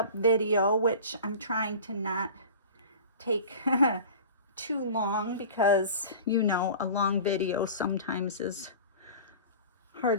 video, which I'm trying to not take too long because, you know, a long video sometimes is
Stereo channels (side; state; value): both; inverted; correlation -0.39